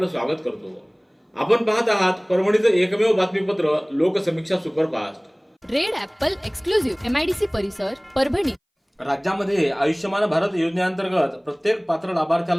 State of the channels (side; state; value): both; identical; correlation 1.00